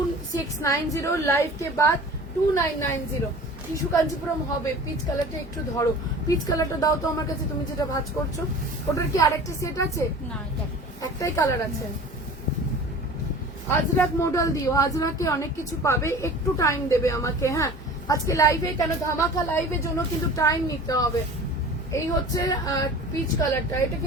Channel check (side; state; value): both; normal; correlation 0.41